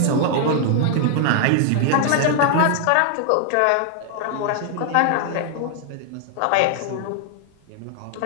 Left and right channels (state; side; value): different; both; correlation 0.00